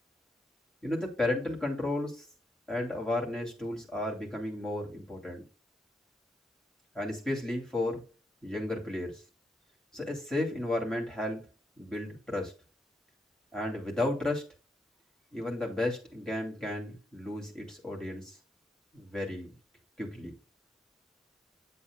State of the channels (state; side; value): normal; both; correlation 0.80